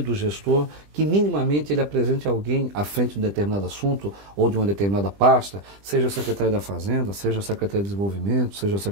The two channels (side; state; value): left; late; 20 ms